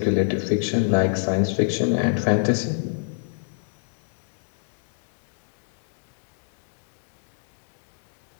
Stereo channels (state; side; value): silent; right; 62 dB below the other